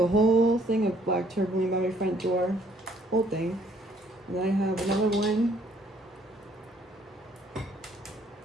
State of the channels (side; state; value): both; normal; correlation 0.63